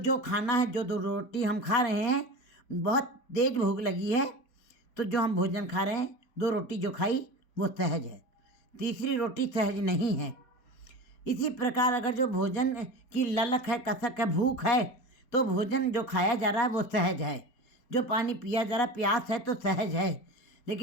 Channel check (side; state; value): right; late; 4.1 ms